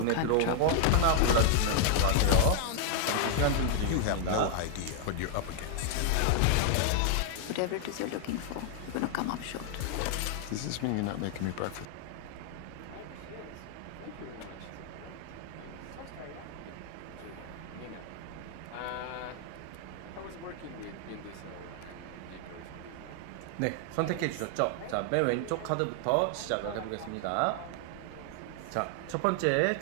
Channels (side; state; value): both; different; correlation 0.00